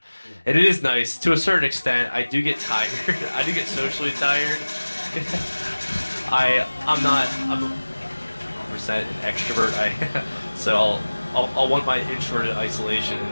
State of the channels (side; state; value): both; inverted; correlation -1.00